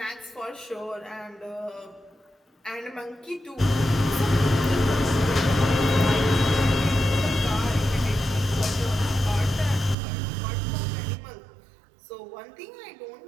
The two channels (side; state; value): left; drops out; at 10.0 s